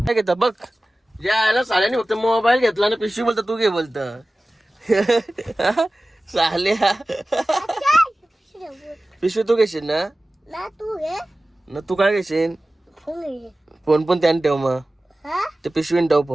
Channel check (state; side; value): normal; both; correlation 0.96